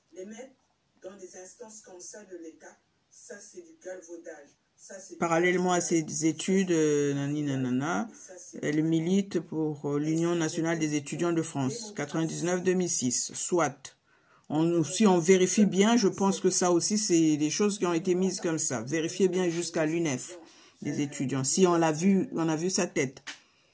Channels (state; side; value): identical; both; correlation 1.00